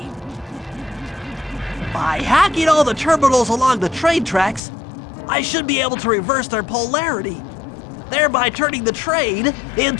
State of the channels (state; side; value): drops out; right; at 4.6 s